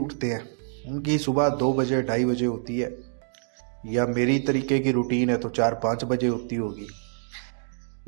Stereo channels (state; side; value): silent; left; 61 dB below the other